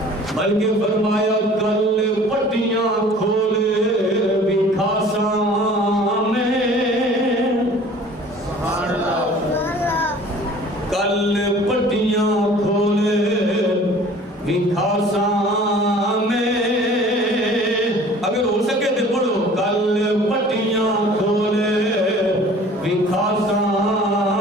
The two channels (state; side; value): normal; both; correlation 0.48